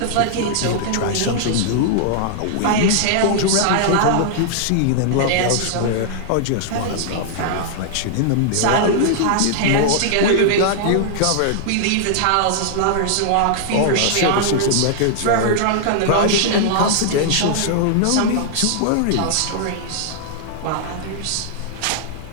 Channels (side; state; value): both; different; correlation -0.01